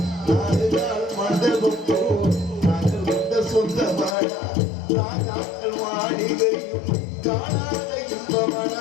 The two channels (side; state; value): right; drops out; at 4.2 s